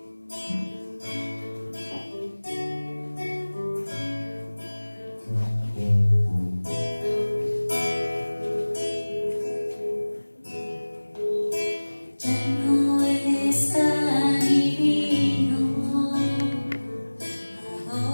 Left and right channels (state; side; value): inverted; both; correlation -1.00